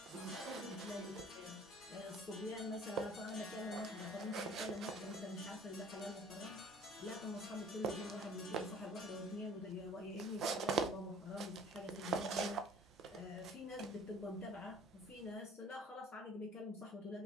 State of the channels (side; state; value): both; normal; correlation 0.51